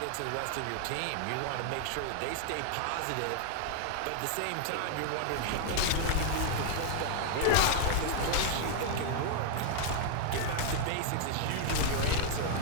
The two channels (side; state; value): both; different; correlation -0.01